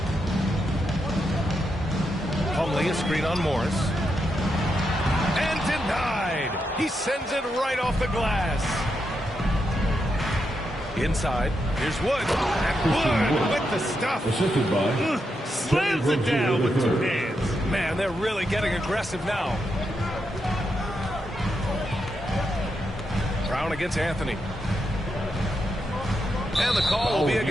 Plumlee, a screen on Morris. And denied. He sends it right off the glass. Inside, here's Wood. And Wood with the stuff. Assisted by Slams it down with 2 hands. Man, they're really getting aggressive now. Brown against Anthony. And the call will be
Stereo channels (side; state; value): both; normal; correlation 0.84